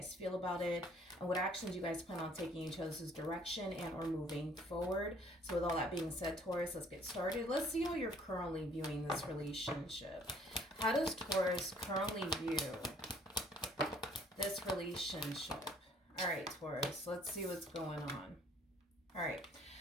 feel about it, and what actions you guys plan on taking each other's direction and or moving forward. So, with all that being said, Taurus, let's get started. Let's see how you're currently viewing this relationship. How does Taurus currently view this relationship? All right, Taurus, let's see what's going on. All right,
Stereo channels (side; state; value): both; normal; correlation 0.59